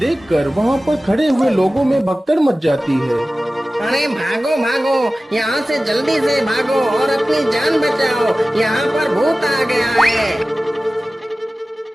वहां पर खड़े हुए लोगों में भगदड़ मच जाती है। अरे भागो भागो, यहाँ से जल्दी से भागो और अपनी जान बचाओ, यहाँ पर भूत आ गया है।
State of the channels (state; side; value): normal; both; correlation 0.97